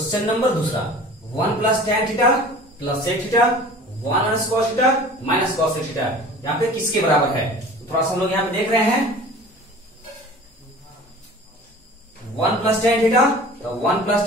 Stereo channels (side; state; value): both; normal; correlation 0.42